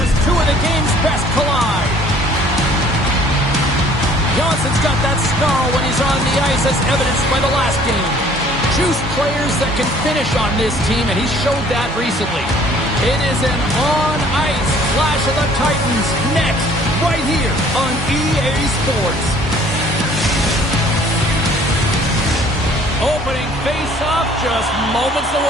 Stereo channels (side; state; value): both; normal; correlation 0.56